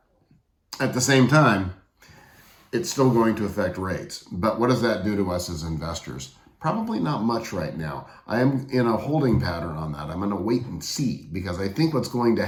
at the same time, it's still going to affect rates. But what does that do to us as investors? Probably not much right now. I am in a holding pattern on that. I'm going to wait and see, because I think what's going to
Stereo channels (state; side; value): identical; both; correlation 1.00